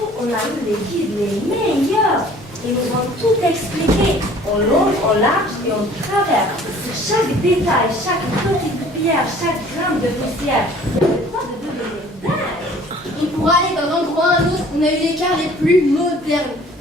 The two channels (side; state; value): both; normal; correlation 0.51